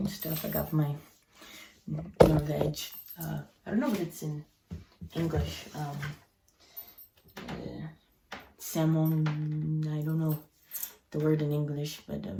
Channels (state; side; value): identical; both; correlation 1.00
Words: stuff. I got my veg. I don't know what it's in English. Salmon, I don't know the word in English, but